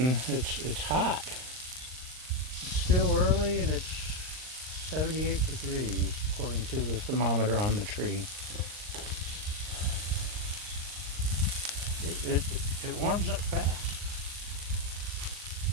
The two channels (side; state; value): left; late; 39 ms